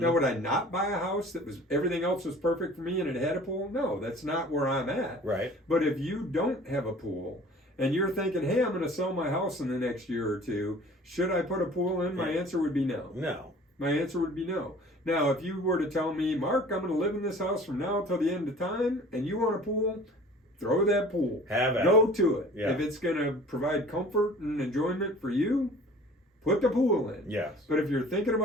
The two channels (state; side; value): normal; both; correlation 0.47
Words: would I not buy a house that was everything else was perfect for me and it had a pool? No, that's not where I'm at. Right. But if you don't have a pool and you're thinking, hey, I'm going to sell my house in the next year or two, should I put a pool in? My answer would be no. No. My answer would be no. Now, if you were to tell me, Mark, I'm going to live in this house from now till the end of time, and you want a pool, throw that pool. Have it. Go to it. Yeah. If it's going to provide comfort and enjoyment for you, put the pool in. Yes. But if you're thinking